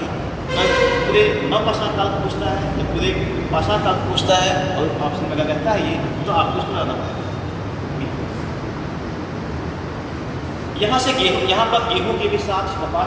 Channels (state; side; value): identical; both; correlation 1.00